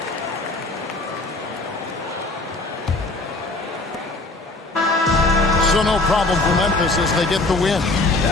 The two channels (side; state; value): right; quieter; 3.0 dB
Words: So no problem for Memphis as they get the win.